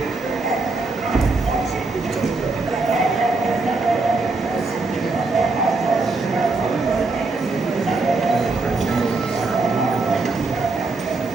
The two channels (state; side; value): quieter; left; 3.7 dB